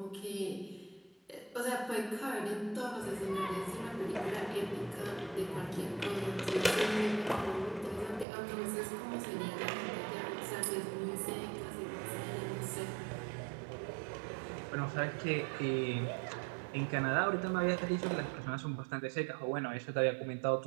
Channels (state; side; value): drops out; left; at 8.2 s